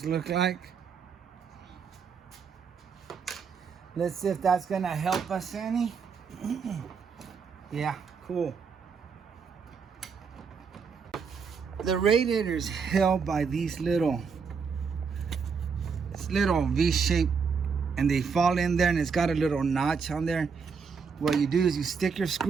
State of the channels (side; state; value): left; quieter; 5.7 dB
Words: look like. Let's see if that's gonna help us any. Yeah, cool. The radiator is held by these little V-shape, and they fall in there, and it's got a little notch on there. What you do is you stick your